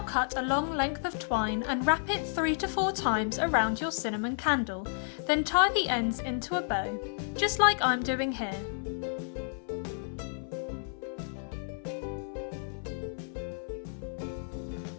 cut a long length of twine and wrap it 3 to 4 times around your cinnamon candle, then tie the ends into a bow, just like I'm doing here.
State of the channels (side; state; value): right; silent; 56 dB below the other